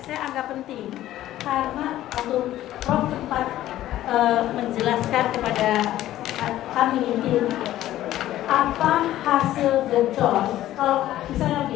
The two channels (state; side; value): quieter; right; 13.8 dB